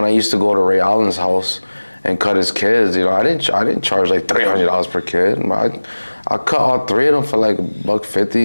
I used to go to Ray Allen's house and cut his kids, you know, I didn't charge like $300 per kid. I cut all three of them for like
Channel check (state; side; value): inverted; both; correlation -1.00